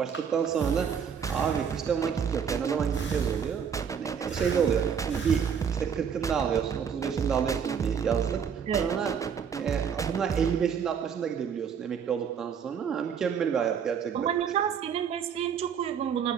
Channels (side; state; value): left; quieter; 7.3 dB